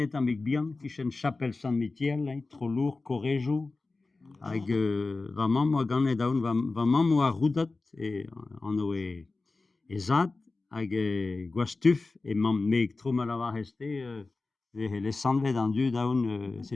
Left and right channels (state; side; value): quieter; right; 3.6 dB